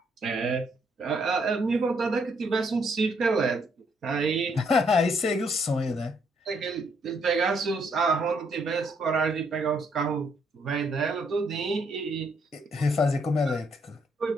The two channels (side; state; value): both; normal; correlation 0.71